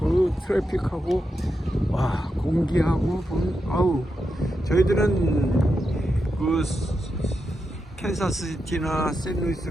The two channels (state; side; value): normal; both; correlation 0.87